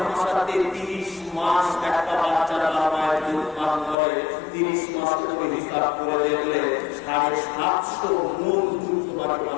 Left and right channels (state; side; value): drops out; right; at 4.0 s